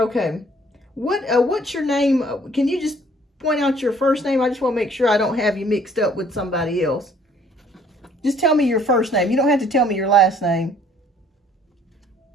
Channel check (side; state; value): both; normal; correlation 0.59